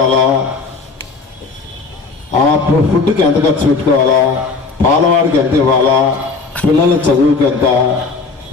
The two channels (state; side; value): quieter; right; 4.2 dB